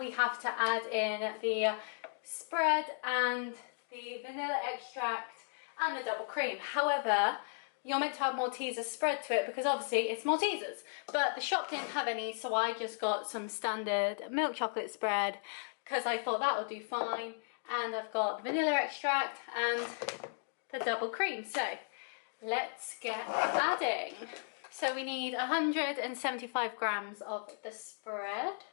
have to add in the spread and the vanilla extract and the double cream. However, you're meant to have Malteser spread to it because obviously it's Maltesers, but the shop didn't have any, so I just got some standard milk chocolate spread because I thought that would do fine. And I've got the vanilla extract and the double cream, so let's get adding. So we need 175 grams of the spread.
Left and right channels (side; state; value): right; silent; digital silence